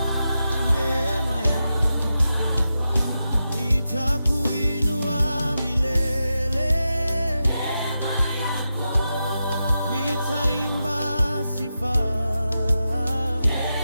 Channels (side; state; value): both; inverted; correlation -0.89